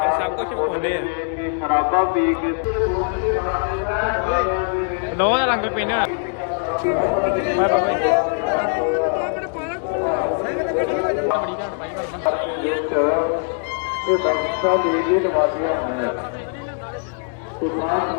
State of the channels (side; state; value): right; silent; 65 dB below the other